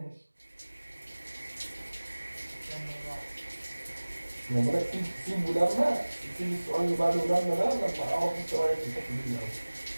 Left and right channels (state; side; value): inverted; both; correlation -1.00